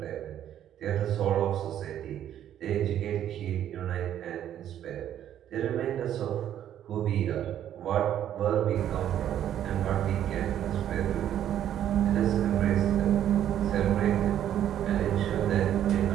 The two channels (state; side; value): quieter; left; 10.8 dB